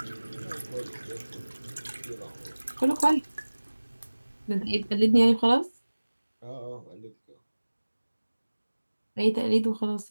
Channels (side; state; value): both; inverted; correlation -1.00